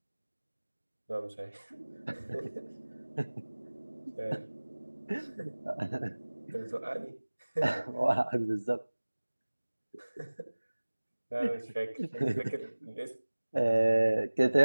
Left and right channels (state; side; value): inverted; both; correlation -1.00